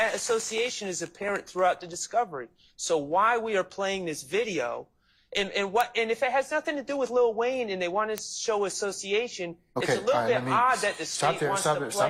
association is apparent throughout the discovery. So why we are playing this video, and if it has nothing to do with Lil Wayne and they want to show association, it's a little bit odd that the state wants to play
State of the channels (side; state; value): both; identical; correlation 1.00